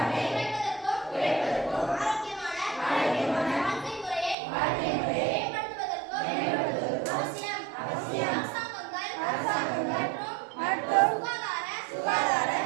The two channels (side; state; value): left; drops out; at 4.4 s